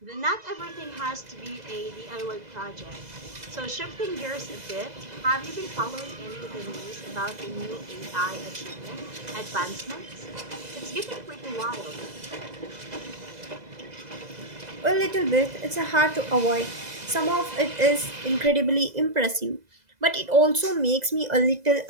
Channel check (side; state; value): left; late; 2.0 ms